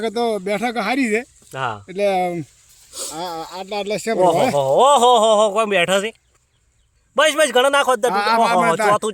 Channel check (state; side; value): identical; both; correlation 1.00